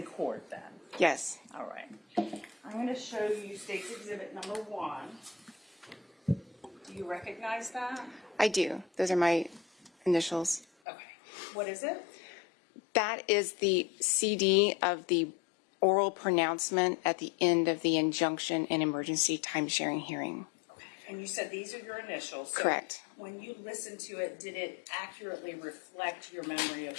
court then? Yes. All right. I'm going to show you State's Exhibit number 1. Do you recognize that? I do. Those are my initials. Okay. What is it? That is the CD of the oral pronouncement at the end of the injunction and emergency time-sharing hearing. Okay. And you said these are your initials. So Correct. when you listened to it, did it accurately reflect your memory of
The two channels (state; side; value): drops out; right; at 10.7 s